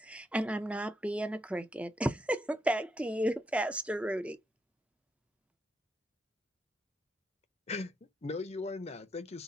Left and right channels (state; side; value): normal; both; correlation 0.81